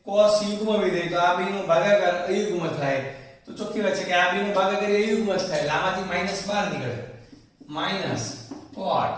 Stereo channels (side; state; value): both; identical; correlation 1.00